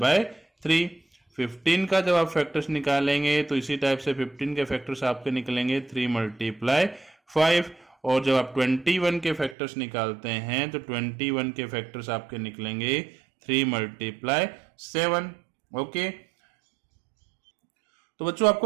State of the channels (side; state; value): left; drops out; at 9.6 s